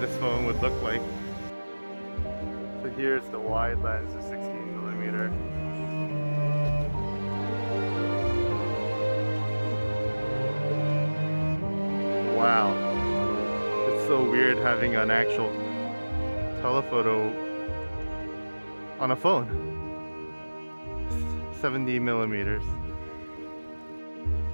this phone would look like. So here's the wide lens of 16mm. Wow. It's so weird having an actual telephoto on a phone. 70mm.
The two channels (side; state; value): both; inverted; correlation -1.00